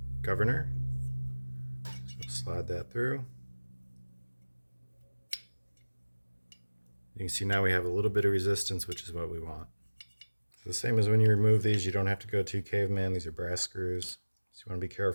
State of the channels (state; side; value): inverted; both; correlation -1.00